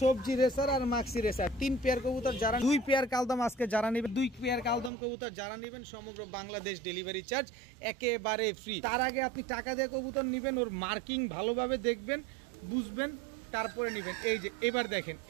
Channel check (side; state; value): left; drops out; at 4.9 s